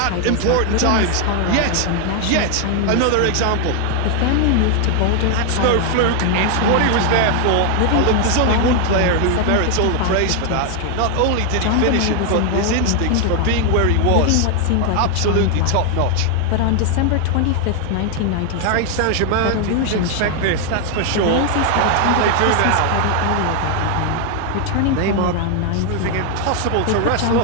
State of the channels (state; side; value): different; both; correlation 0.00